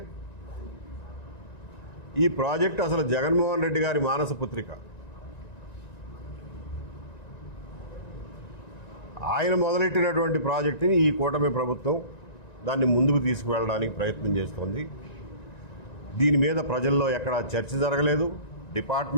ఈ ప్రాజెక్టు అసలు జగన్మోహన్ రెడ్డి గారి మానస పుత్రిక. ఆయన మొదలెట్టినటువంటి ప్రాజెక్టుని ఈ కూటమి ప్రభుత్వం దాన్ని ముందుకు తీసుకువెళ్ళడానికి ప్రయత్నం చేస్తోంది. దీని మీద ప్రజల్లో ఎక్కడా చర్చ జరగలేదు.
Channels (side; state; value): right; late; 1.9 ms